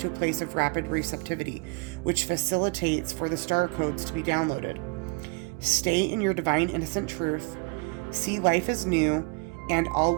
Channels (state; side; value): quieter; left; 30.6 dB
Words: a place of rapid receptivity, which facilitates for the star codes to be downloaded. Stay in your divine innocent truth. See life as new, and all